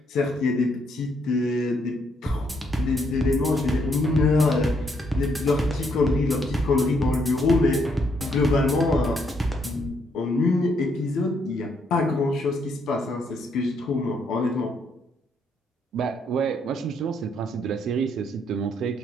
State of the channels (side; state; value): both; normal; correlation 0.73